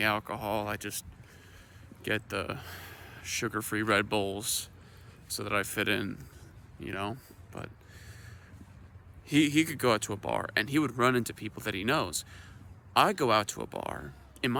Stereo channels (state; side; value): identical; both; correlation 1.00